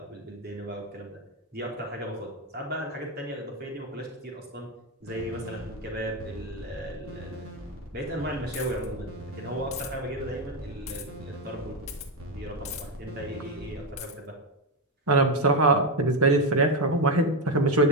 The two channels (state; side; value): normal; both; correlation 0.09